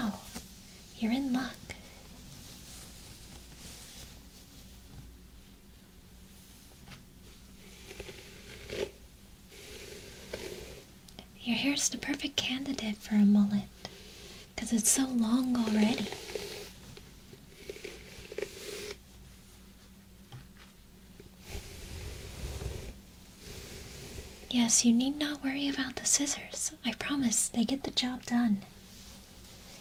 You're in luck. Your hair's the perfect candidate for a mullet, because it's so long already. Yes, you need not worry about the scissors. I promise, they get the job done.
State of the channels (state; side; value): identical; both; correlation 1.00